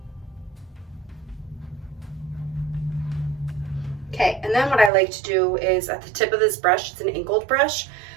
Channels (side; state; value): left; drops out; at 4.9 s